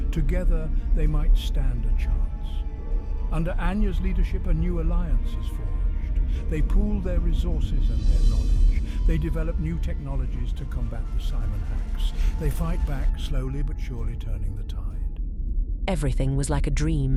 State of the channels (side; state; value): both; identical; correlation 1.00